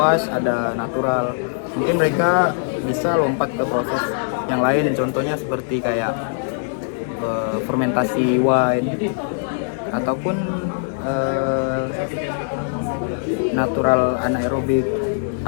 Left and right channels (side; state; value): right; silent; 65 dB below the other